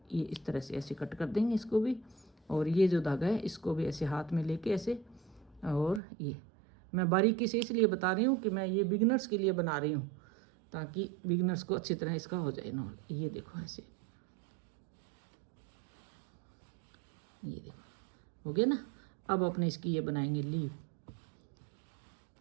ये इस तरह से ऐसे कट कर देंगे इसको भी। और ये जो धागा है इसको भी ऐसे हाथ में लेके ऐसे, और ये मैं बारीकी से इसलिए बता रही हूँ कि मैं ये बिगिनर्स के लिए बना रही हूँ ताकि बिगिनर्स को अच्छी तरह इसका हो जाए ना। ये देखो ऐसे, ये देखो हो गया ना। अब अपने इसकी ये बनाएंगे लीफ।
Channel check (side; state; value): left; drops out; at 6.0 s